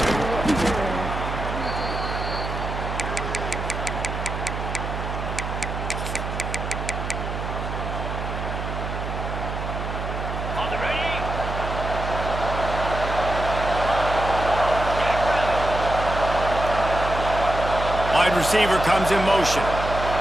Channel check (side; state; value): right; noise; hum, 5 dB below the sound